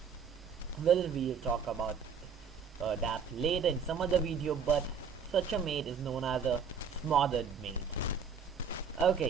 Well, we'll talk about that later in some other video, but such a mate is known as a smothered mate.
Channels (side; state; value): left; quieter; 6.2 dB